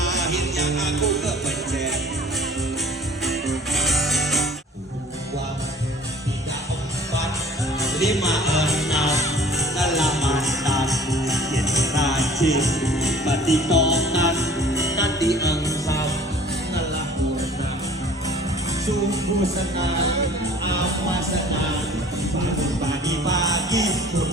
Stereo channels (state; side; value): normal; both; correlation 0.49